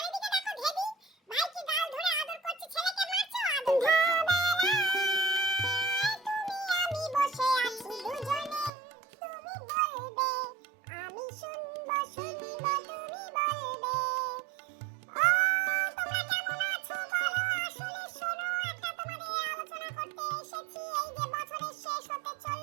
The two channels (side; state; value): left; drops out; at 8.7 s